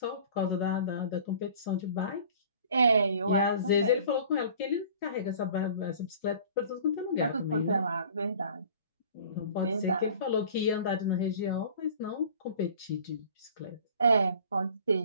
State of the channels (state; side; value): inverted; both; correlation -0.47